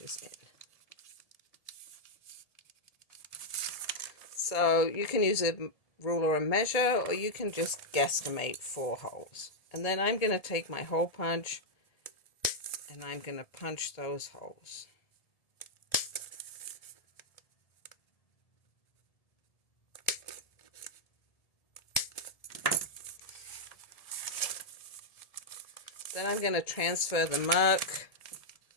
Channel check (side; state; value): right; late; 1.7 ms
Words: in. So you can use a ruler and measure, or you can just guesstimate 4 holes. And then I'm going to take my hole punch and I'm going to punch those holes. Then I'm going to transfer the mark